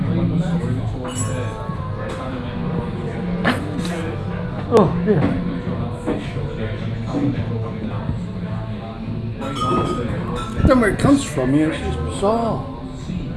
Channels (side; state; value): both; identical; correlation 1.00